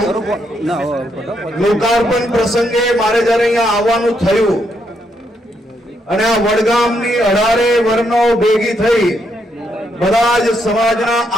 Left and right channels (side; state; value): both; normal; correlation 0.77